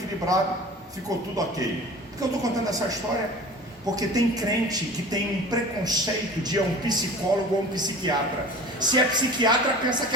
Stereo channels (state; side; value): normal; both; correlation 0.40